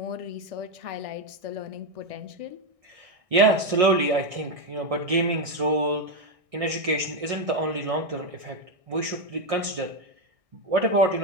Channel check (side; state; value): left; late; 1.6 ms